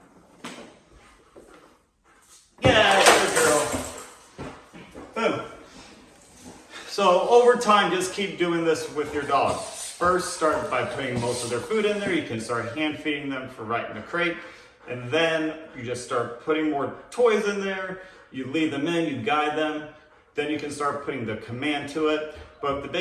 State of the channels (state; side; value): identical; both; correlation 1.00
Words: So over time, just keep doing this with your dog. First, start by putting most of their food in there. You can start hand feeding them for right in the crate. And then you just start putting more toys in there. You lead them in, you guide them. Then you can start putting the command to it. But the